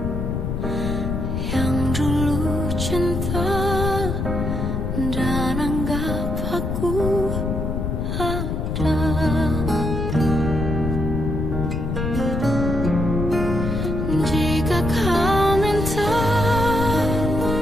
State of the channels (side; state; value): left; noise; rumble, 2 dB below the sound